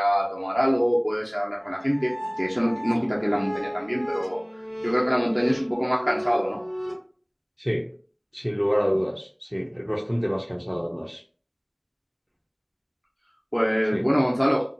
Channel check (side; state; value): both; identical; correlation 1.00